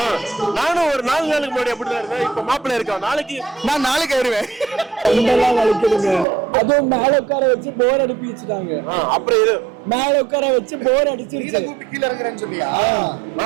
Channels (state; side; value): drops out; left; at 6.2 s